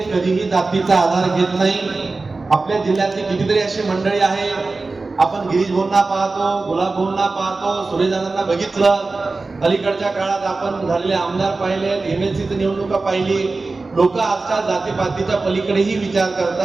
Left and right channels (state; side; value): quieter; left; 3.6 dB